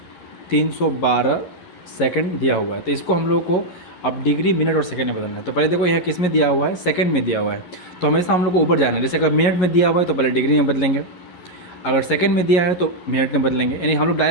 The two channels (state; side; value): late; right; 11 ms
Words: सेकंड दिया हुआ है। तो इसको हम लोग को अब डिग्री मिनट और सेकंड में बदलना है। तो पहले देखो यहाँ किस में दिया हुआ है, सेकंड में दिया हुआ है। तो हमेशा हम लोग को ऊपर जाना है। जैसे अगर मिनट में दिया हुआ है तो पहले डिग्री में बदलेंगे, अगर सेकंड में दिया है तो मिनट में बदलेंगे। यानी हम लोग